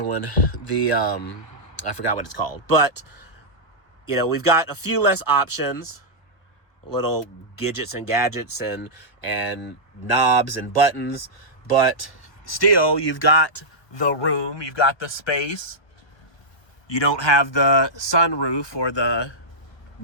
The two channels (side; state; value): right; late; 1.2 ms